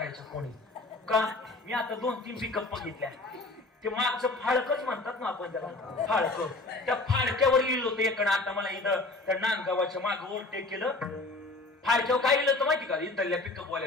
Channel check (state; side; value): quieter; right; 3.2 dB